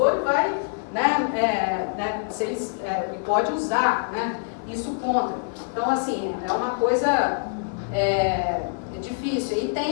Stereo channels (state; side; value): silent; right; 62 dB below the other